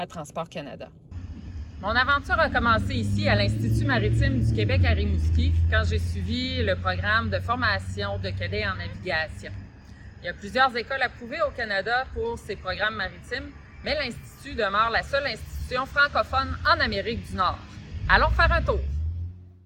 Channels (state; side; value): identical; both; correlation 1.00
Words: Transport Canada. Mon aventure a commencé ici à l'Institut maritime du Québec à Rimouski quand j'ai suivi le programme de formation de cadets en navigation. Il y a plusieurs écoles approuvées au Canada pour ces programmes maritimes, mais l'Institut demeure la seule institution francophone en Amérique du Nord. Allons faire un tour!